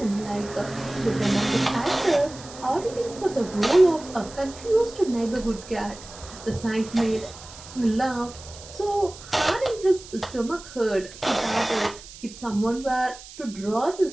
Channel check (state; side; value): noise; right; hiss, 17 dB below the sound